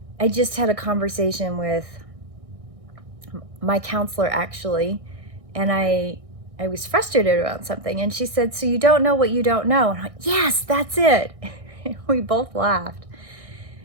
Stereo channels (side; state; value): left; late; 1.6 ms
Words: I just had a conversation with my counselor, actually, and I was frustrated about something, and she said, so you don't know what you don't know? And I'm like, yes, that's it. We both laughed.